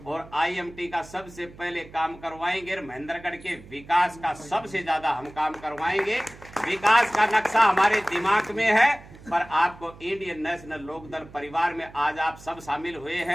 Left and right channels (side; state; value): right; noise; hum, 20 dB below the sound